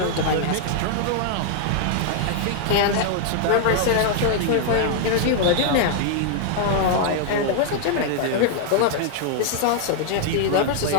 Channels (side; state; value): both; different; correlation -0.01